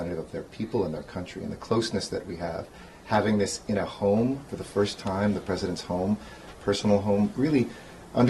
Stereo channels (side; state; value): both; identical; correlation 1.00